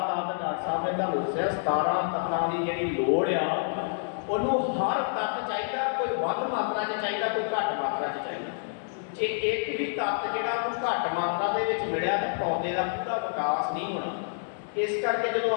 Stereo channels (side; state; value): right; silent; digital silence